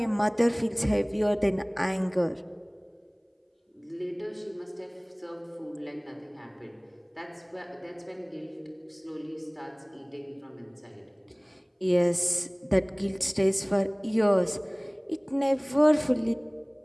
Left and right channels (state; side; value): identical; both; correlation 1.00